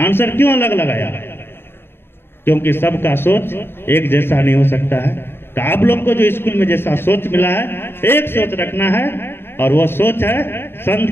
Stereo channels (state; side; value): late; right; 0.11 ms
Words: क्यों अलग लगाया? क्योंकि सबका सोच एक जैसा नहीं हो सकता है। तो आप लोग को जो स्कूल में जैसा सोच मिला है, एक सोच रखना है, और वो सोच है संत